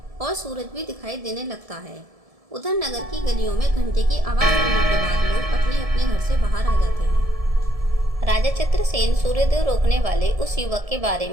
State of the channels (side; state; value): left; late; 1.7 ms